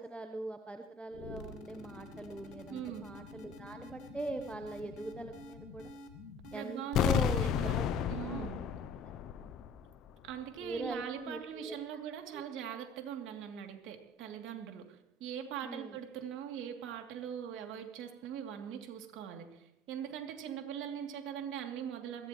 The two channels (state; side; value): normal; both; correlation 0.46